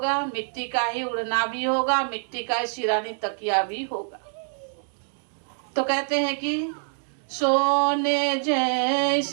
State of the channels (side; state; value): left; silent; 61 dB below the other